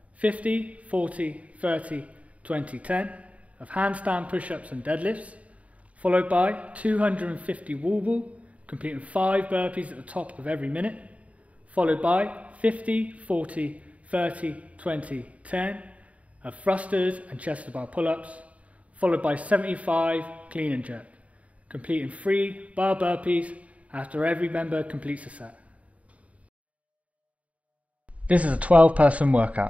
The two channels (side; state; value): left; late; 0.067 ms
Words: 50, 40, 30, 20, 10 of handstand push-ups and deadlifts, followed by 250 wall ball, completing 5 burpees at the top of every minute, followed by 50, 40, 30, 20, 10 of thrusters and chest to bar pull-ups, followed by 75 clean and jerk, completing 3 bar burpees after every member completes a set. This is a 12-person